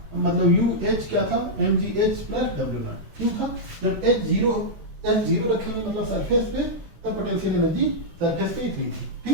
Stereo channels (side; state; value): left; late; 14 ms